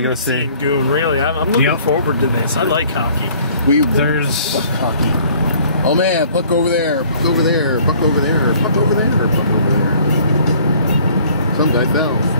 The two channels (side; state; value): both; inverted; correlation -0.56